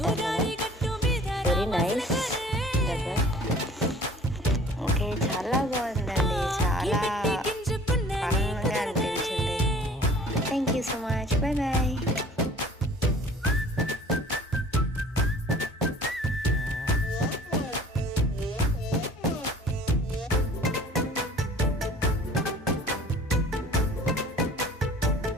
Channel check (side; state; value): both; normal; correlation 0.49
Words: కదా, వెరీ నైస్. ఓకే, చాలా బాగుందండి, చాలా